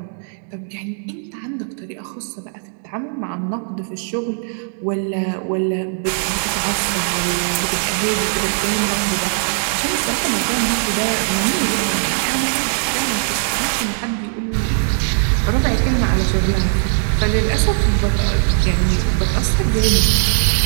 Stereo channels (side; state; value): left; silent; 66 dB below the other